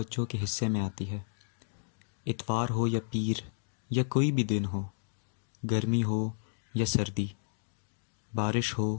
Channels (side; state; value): right; silent; digital silence